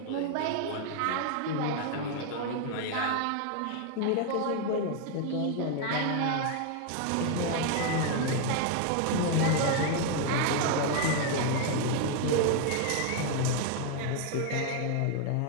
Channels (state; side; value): different; both; correlation 0.00